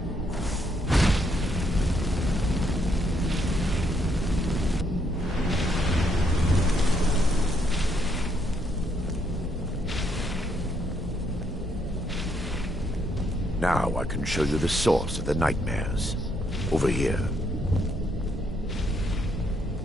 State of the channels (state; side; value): normal; both; correlation 0.73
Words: Now I can show you the source of the nightmares. Over here.